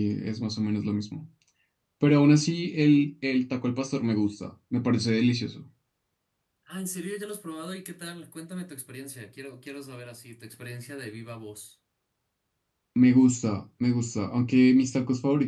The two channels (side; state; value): both; identical; correlation 1.00